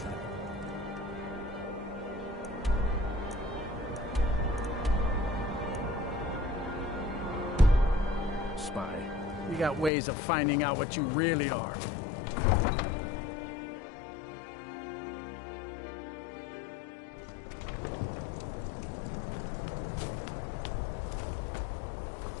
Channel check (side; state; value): right; drops out; at 9.9 s